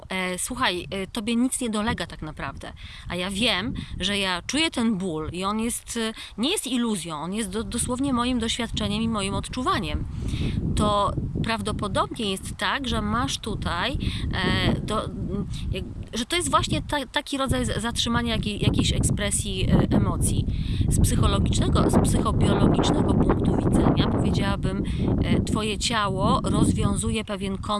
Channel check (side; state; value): both; identical; correlation 1.00